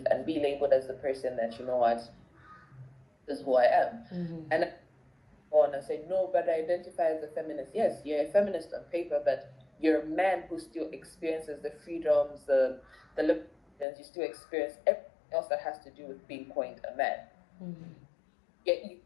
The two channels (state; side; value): drops out; right; at 13.9 s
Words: and be labeled as the person that, you know what, this is who I am. And I go on and say, no, but I identify as a feminist. Yes, you're a feminist on paper, but you're a man who still experiences the freedoms, the liberties, you still experience everything else that has to do with being coined a man. Yet